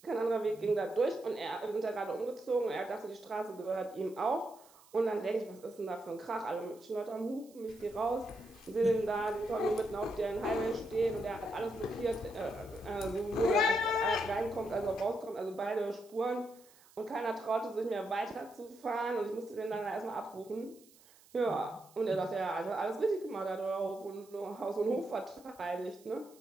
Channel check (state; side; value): noise; right; hiss, 26 dB below the sound